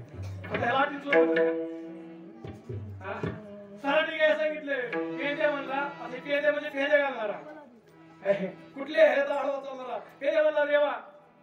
सराटे घ्या सांगितले. पेंद्या म्हणला, पेंद्या म्हणजे पेंद्या घालणारा. कुठले पेंद्या म्हणला देवा.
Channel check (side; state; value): both; identical; correlation 1.00